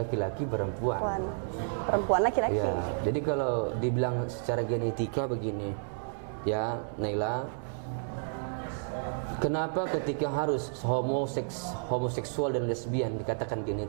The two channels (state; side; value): silent; left; digital silence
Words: perempuan laki-laki. Ya, jadi kalau dibilang secara genetika begini, ya Naila, kenapa ketika harus homoseksual dan lesbian dikatakan